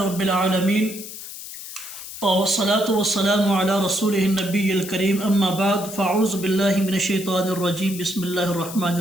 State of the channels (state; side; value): noise; left; hiss, 11 dB below the sound